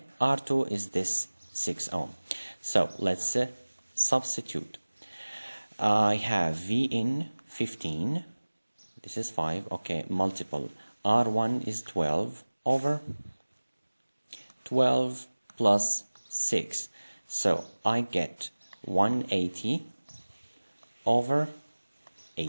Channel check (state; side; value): inverted; both; correlation -1.00